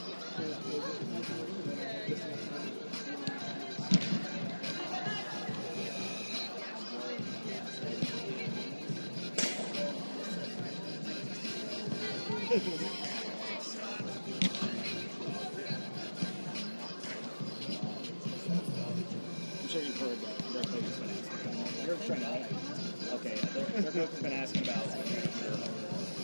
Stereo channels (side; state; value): both; inverted; correlation -1.00